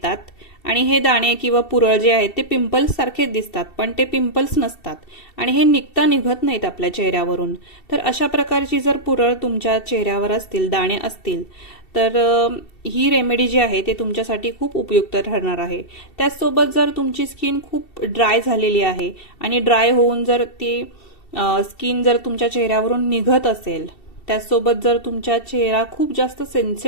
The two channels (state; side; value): late; right; 2.7 ms